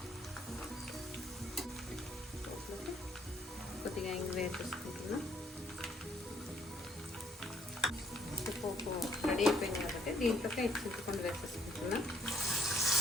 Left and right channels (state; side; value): normal; both; correlation 0.66